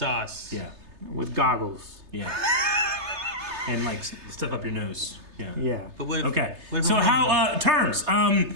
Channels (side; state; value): left; late; 3.3 ms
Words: Yeah. with goggles. Yeah. And like stuff up your nose. Yeah. Yeah. But what if, Okay. what if So I'm how terms?